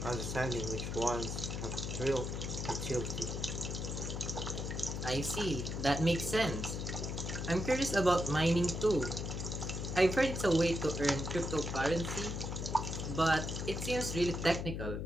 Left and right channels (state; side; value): noise; left; hum, 4 dB below the sound